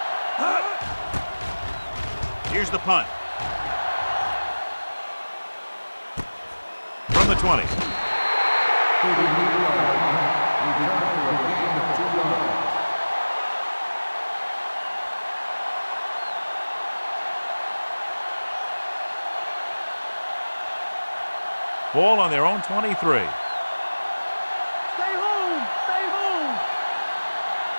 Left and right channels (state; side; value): inverted; both; correlation -1.00